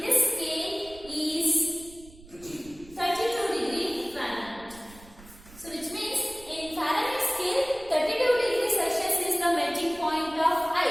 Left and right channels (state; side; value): noise; right; rumble, 21 dB below the sound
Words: this scale is 32 degree Fahrenheit. So which means in Fahrenheit scale 32 degrees Celsius is the melting point of